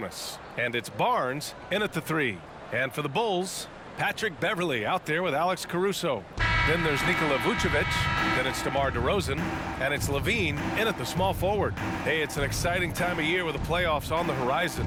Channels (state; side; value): identical; both; correlation 1.00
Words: And it's Barnes in at the 3. And for the Bulls, Patrick Beverley out there with Alex Caruso. Then there's Nikola Vucevic. Then it's DeMar DeRozan. And it's LaVine in at the small forward. Hey, it's an exciting time of year with the playoffs on the horizon.